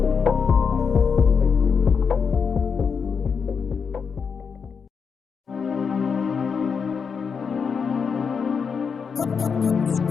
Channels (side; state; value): right; quieter; 6.0 dB